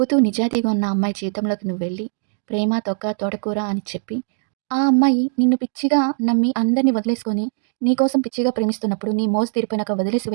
నిజాయితీగా ఉన్న అమ్మాయి జీవితంలోకి నువ్వు వెళ్ళి ప్రేమ తొక్క తోటకూర అని చెప్పి ఆ అమ్మాయి నిన్ను పిచ్చిగా నమ్మి అందరిని వదిలేసుకొని నీకోసం పిచ్చిగా ప్రేమిస్తున్నప్పుడు నీ మోజు తీరిపోయినాక వదిలేసి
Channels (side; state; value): left; silent; digital silence